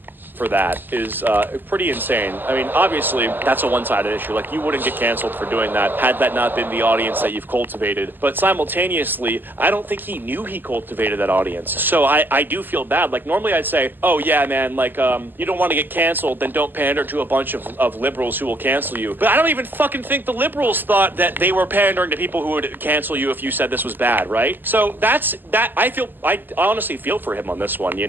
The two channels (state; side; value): late; left; 0.091 ms